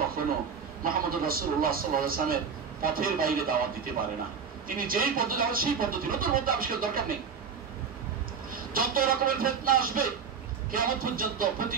কখনো মুহাম্মদুর রাসূলুল্লাহ সাল্লাল্লাহু আলাইহি ওয়াসাল্লামের পথের বাইরে দাওয়াত দিতে পারে না। তিনি যেই পদ্ধতি, সেই পদ্ধতি, নতুন মধ্যে আবিষ্কার দরকার নেই। যত রকমের ফিতনা আসবে কিয়ামত পর্যন্ত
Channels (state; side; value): quieter; left; 6.3 dB